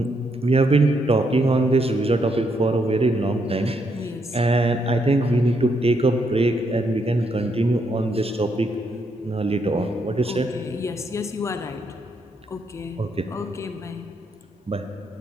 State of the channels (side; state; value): both; normal; correlation 0.76